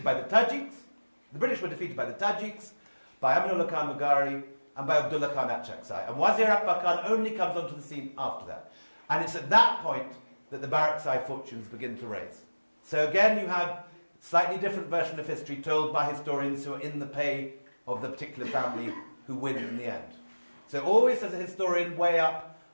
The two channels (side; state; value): both; inverted; correlation -1.00